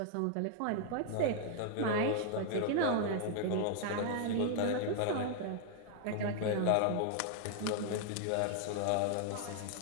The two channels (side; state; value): both; different; correlation -0.01